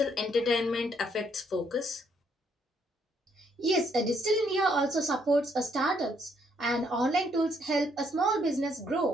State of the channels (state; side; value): normal; both; correlation 0.70